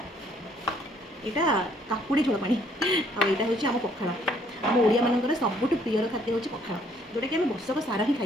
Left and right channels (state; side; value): normal; both; correlation 0.64